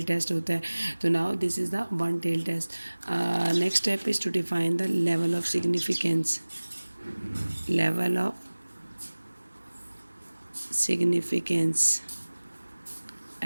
टेस्ट होता है. तो now this is the one tail test. Next step is to define the level of significance.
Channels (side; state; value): both; inverted; correlation -1.00